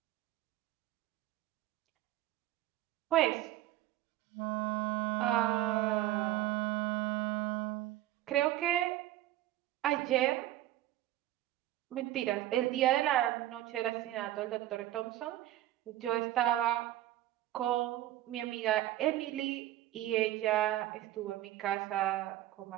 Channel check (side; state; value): left; quieter; 14.4 dB